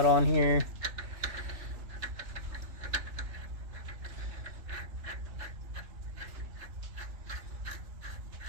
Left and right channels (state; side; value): late; left; 3.4 ms